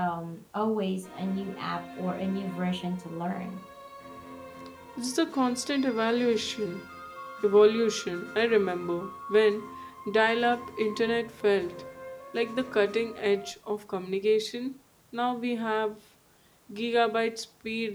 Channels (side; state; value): both; identical; correlation 1.00